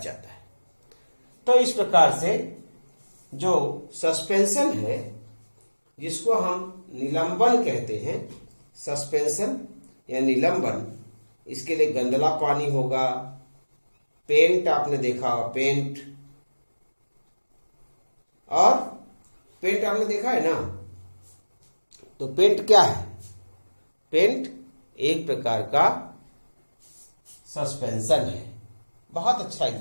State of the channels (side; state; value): both; inverted; correlation -1.00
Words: है। तो इस प्रकार से जो सस्पेंशन है, जिसको हम निलंबन कहते हैं, सस्पेंशन या निलंबन, इसके लिए गंदला पानी होगा, पेंट आपने देखा होगा, पेंट, और पेंट आपने देखा है ना, तो पेंट क्या है, पेंट एक प्रकार का सस्पेंशन है, बहुत अच्छा